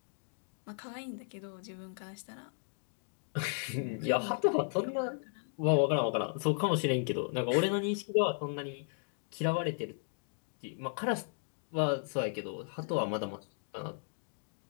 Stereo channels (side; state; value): right; silent; digital silence